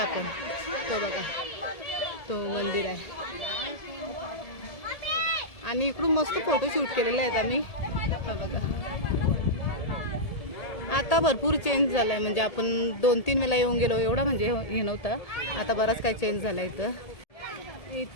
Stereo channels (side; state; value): right; late; 1.7 ms